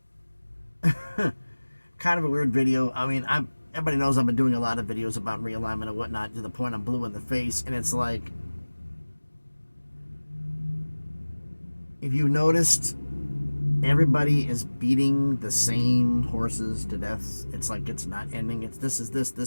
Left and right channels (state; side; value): inverted; both; correlation -1.00